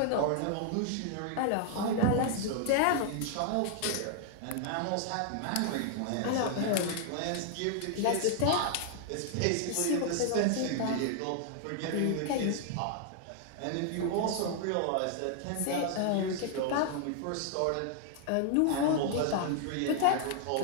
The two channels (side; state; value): both; different; correlation 0.00